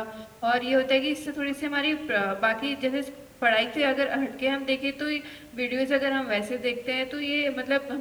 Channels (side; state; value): both; identical; correlation 1.00